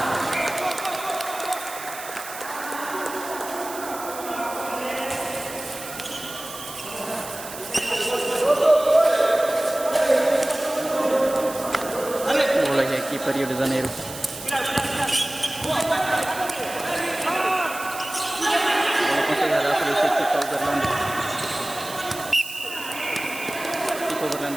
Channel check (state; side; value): noise; right; hiss, 12 dB below the sound